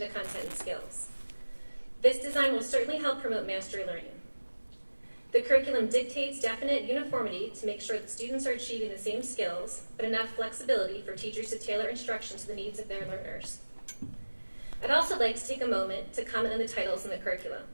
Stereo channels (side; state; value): both; inverted; correlation -1.00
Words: to content and skills. This design will certainly help promote mastery learning. The curriculum dictates definite uniformity to make sure that students are achieving the same skills, but enough flexibility for teachers to tailor instruction to the needs of their learners. I'd also like to take a moment to comment on the titles in the curriculum.